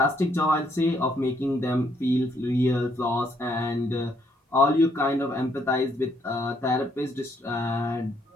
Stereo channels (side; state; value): both; normal; correlation 0.71